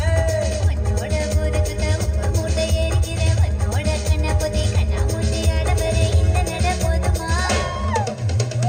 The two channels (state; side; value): identical; both; correlation 1.00